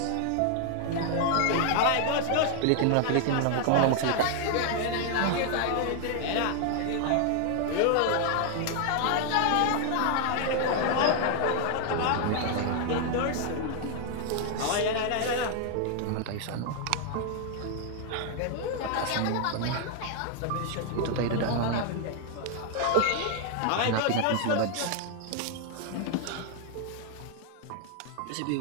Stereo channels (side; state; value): both; different; correlation 0.00